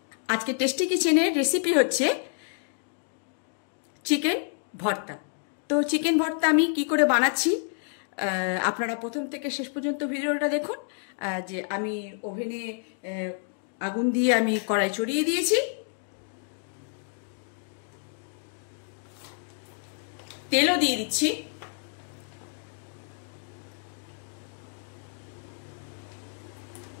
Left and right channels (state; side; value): silent; right; 59 dB below the other